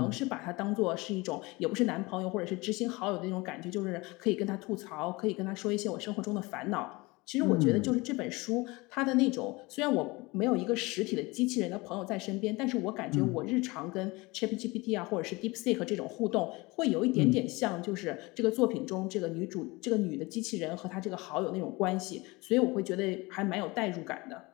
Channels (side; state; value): right; quieter; 23.7 dB